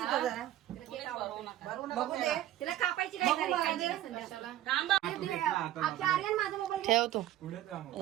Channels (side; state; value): left; quieter; 13.6 dB